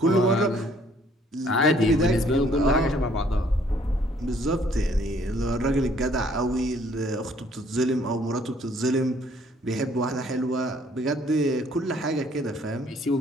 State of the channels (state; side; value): normal; both; correlation 0.62